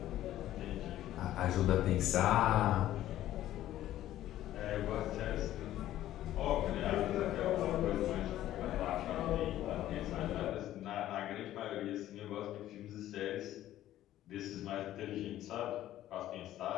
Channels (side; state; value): right; quieter; 13.4 dB